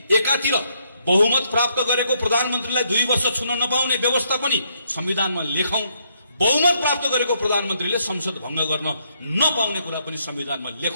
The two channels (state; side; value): inverted; both; correlation -0.74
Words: एकातिर बहुमत प्राप्त गरेको प्रधानमन्त्रीलाई 2 वर्ष छुन नपाउने व्यवस्था पनि संविधानमा लेखौं, बहुमत प्राप्त गरेको प्रधानमन्त्रीले संसद भंग गर्न नपाउने कुरा पनि संविधानमा